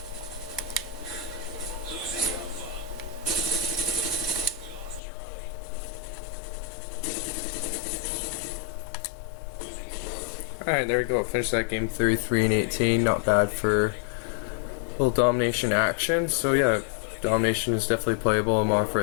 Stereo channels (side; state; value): right; drops out; at 5.0 s